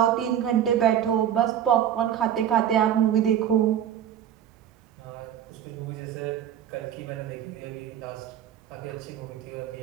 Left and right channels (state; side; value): quieter; left; 10.1 dB